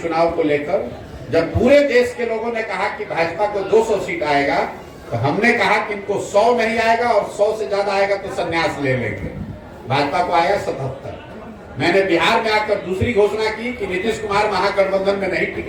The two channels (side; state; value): both; identical; correlation 1.00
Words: चुनाव को लेकर। जब पूरे देश के लोगों ने कहा कि भाजपा को 200 सीट आएगा, तो हमने कहा कि इनको 100 नहीं आएगा और 100 से ज्यादा आएगा तो संन्यास ले लेंगे। भाजपा को आया 77। मैंने बिहार में आकर दूसरी घोषणा की कि नीतीश कुमार महागठबंधन में नहीं